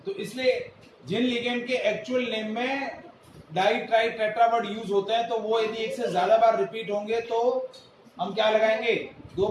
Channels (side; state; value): both; identical; correlation 1.00